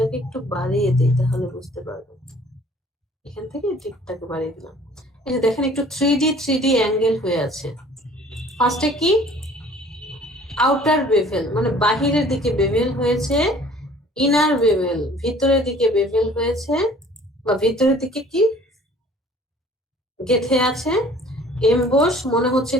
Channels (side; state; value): both; normal; correlation 0.52